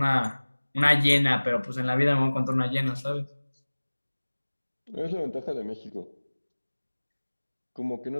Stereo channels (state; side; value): inverted; both; correlation -1.00